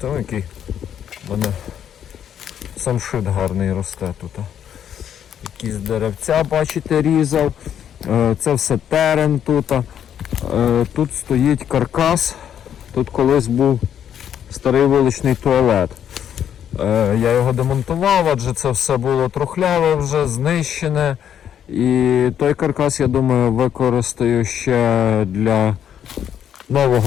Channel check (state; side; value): quieter; right; 9.4 dB